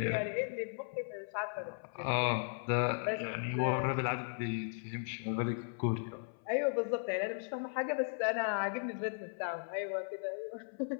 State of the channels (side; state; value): right; silent; 53 dB below the other